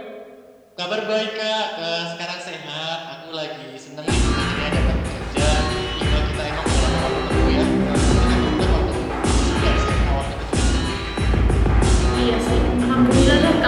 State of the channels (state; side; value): identical; both; correlation 1.00